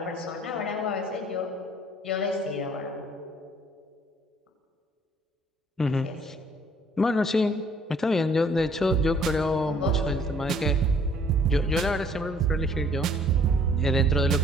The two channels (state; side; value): normal; both; correlation 0.60